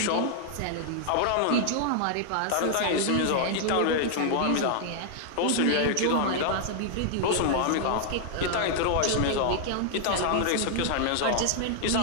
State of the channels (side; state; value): both; different; correlation 0.00